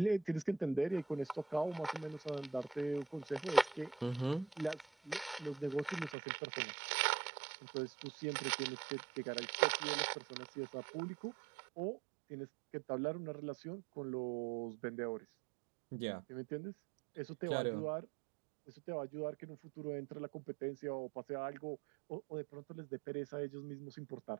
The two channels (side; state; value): left; drops out; at 6.2 s